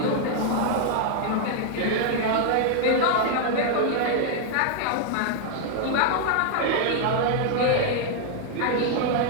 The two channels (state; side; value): different; both; correlation 0.00